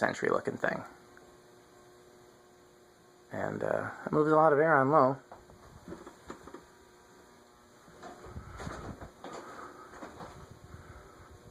looking thing. And it moves a lot of air on low.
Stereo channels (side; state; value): both; identical; correlation 1.00